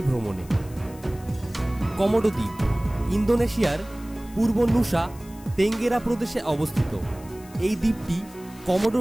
ভ্রমণে। কমোডো দ্বীপ ইন্দোনেশিয়ার পূর্ব নুসা তেঙ্গেরা প্রদেশে অবস্থিত। এই দ্বীপটি কমোডো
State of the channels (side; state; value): left; noise; hiss, 22 dB below the sound